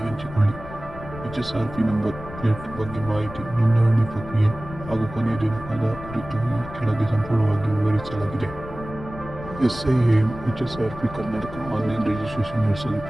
ಹಂಚಿಕೊಳ್ಳಿ. HSRP ನಂಬರ್ ಪ್ಲೇಟ್ ಬಗ್ಗೆ ಮಾಹಿತಿ, ನೋಂದಣಿ ಪ್ರಕ್ರಿಯೆ ಹಾಗೂ ಕೊನೆಯ ದಿನಾಂಕದ ಕುರಿತು ಈ ಕೆಳಗೆ ಸಂಪೂರ್ಣವಾಗಿ ವಿವರಿಸಲಾಗಿದೆ. SIAM HSRP Karnataka online registration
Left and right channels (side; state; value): left; noise; rumble, 13 dB below the sound